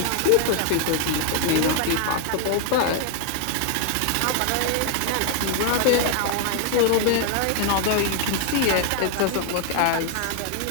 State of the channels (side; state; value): both; different; correlation 0.00